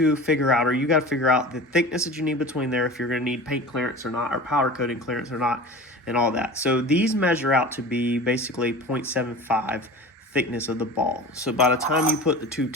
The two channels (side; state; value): both; normal; correlation 0.35